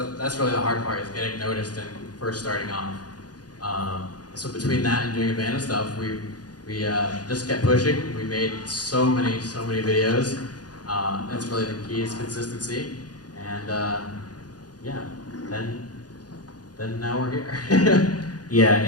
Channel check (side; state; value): right; late; 0.69 ms